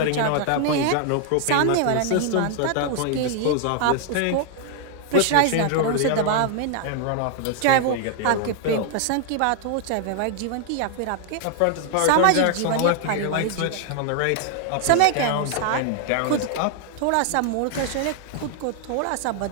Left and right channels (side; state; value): both; different; correlation 0.00